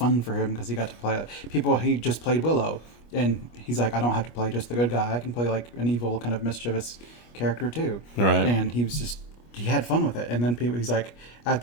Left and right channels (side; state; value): right; late; 25 ms